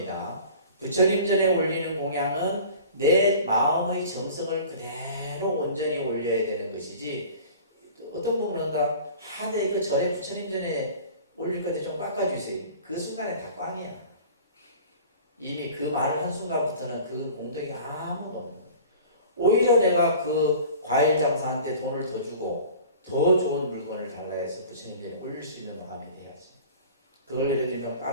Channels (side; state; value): both; inverted; correlation -0.43